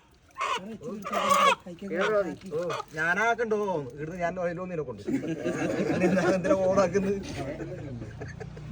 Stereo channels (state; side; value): identical; both; correlation 1.00